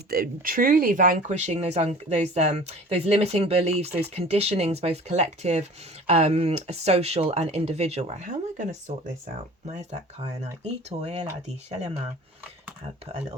truly vanquishing those limiting beliefs, those conditionings, both collective, social and individual. Right, how am I going to sort this out? Where's that kyanite? I'll put a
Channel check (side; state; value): both; normal; correlation 0.43